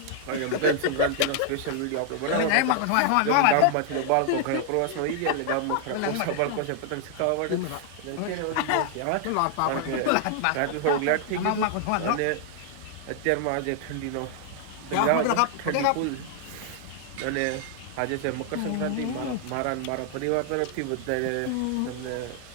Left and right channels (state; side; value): different; both; correlation 0.00